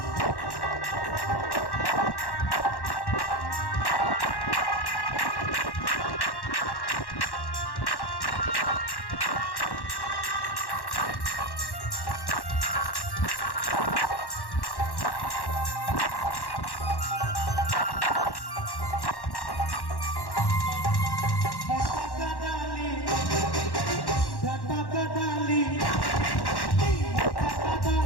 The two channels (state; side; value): late; right; 1.1 ms